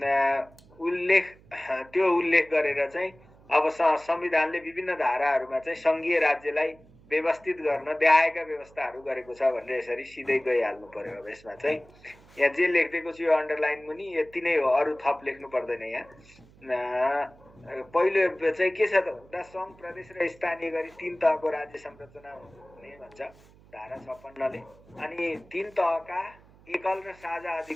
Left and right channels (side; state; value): right; noise; hum, 26 dB below the sound